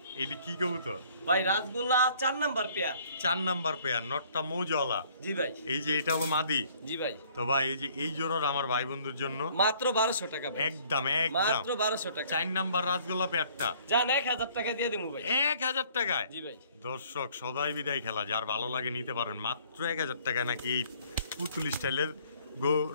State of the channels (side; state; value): both; inverted; correlation -0.59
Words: এইটা কি কবুতর ভাই? রাজগোল্লা 4 নাম্বার পেয়ার। 4 number pair. নটটা মৌজওয়ালা। জি ভাই। এই যে এটা হলো মাদি। জি ভাই। তো ভাই এই যে এই জোড়ার আমার ভাই বন্ধুর জন্য মাত্র 1200 টাকা ভাই। একদম একদম মাত্র 1200 টাকা। 4 নাম্বার রাজগোল্লা পেয়ারটা জান 1000 টাকা দিয়ে দেবো ভাই। 1000 টাকায়? জি ভাই। দর্শক সদাই বিদায় খেলা যার ভালো লাগে নিতে পারেন মাত্র 1000 টাকায় নাকি এই পুতুল স্টাইলের